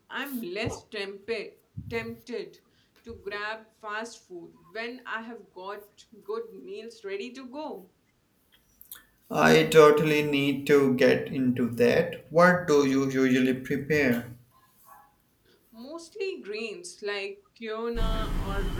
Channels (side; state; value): both; identical; correlation 1.00